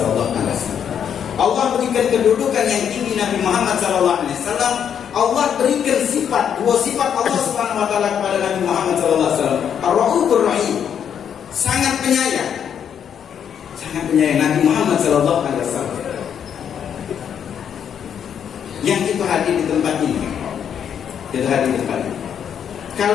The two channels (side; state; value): right; quieter; 8.4 dB